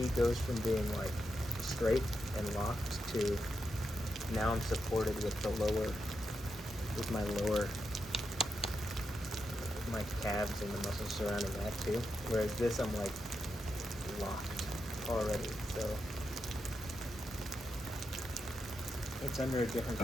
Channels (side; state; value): both; normal; correlation 0.86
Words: goes from being like straight and locked to now I'm supported with my calves and the muscles surrounding that too. Whereas this, I'm like locked already, so it's under a different